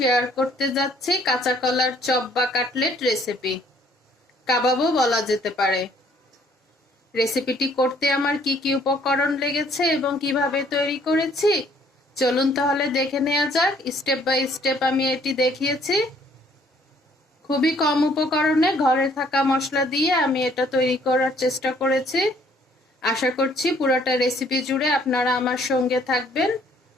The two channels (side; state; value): both; normal; correlation 0.62